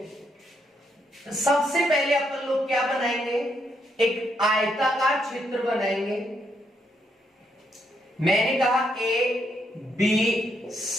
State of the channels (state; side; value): normal; both; correlation 0.76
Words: सबसे पहले अपन लोग क्या बनाएंगे, एक आयताकार क्षेत्र बनाएंगे। मैंने कहा ए बी